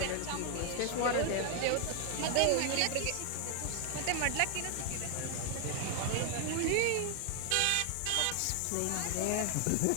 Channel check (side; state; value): both; different; correlation 0.00